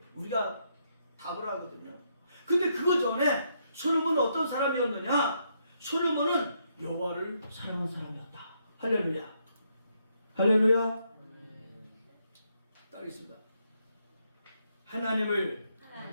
우리가 답을 하거든요. 근데 그거 전에 솔로몬은 어떤 사람이었느냐? 솔로몬은 여호와를 사랑한 사람이었다. 할렐루야. 할렐루야. 따르겠습니다. 하나님을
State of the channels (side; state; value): both; inverted; correlation -0.76